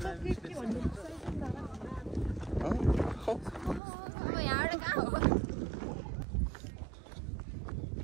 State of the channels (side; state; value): left; drops out; at 3.8 s